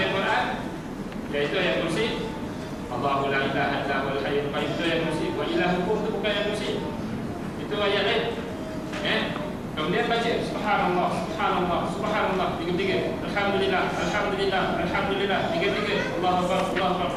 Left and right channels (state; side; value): identical; both; correlation 1.00